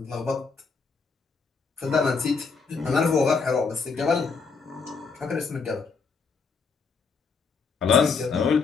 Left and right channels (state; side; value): quieter; right; 4.9 dB